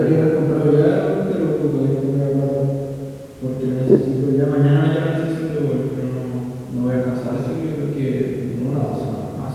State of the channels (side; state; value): both; identical; correlation 1.00